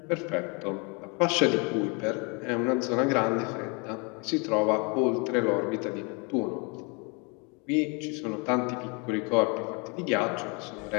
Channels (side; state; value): right; quieter; 32.0 dB